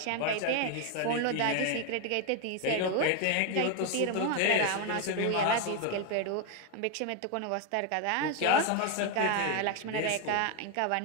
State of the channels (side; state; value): both; different; correlation 0.01